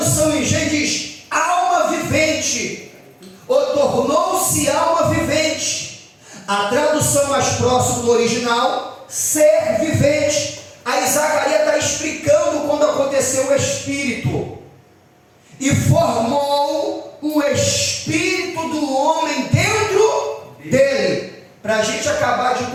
em G diz alma vivente, ou tornou-se alma vivente. A tradução mais próxima do original, ser vivente. Aí Zacarias está explicando quando aconteceu o Espírito, e formou o Espírito do homem dentro dele. Para a gente acabar a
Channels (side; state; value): both; identical; correlation 1.00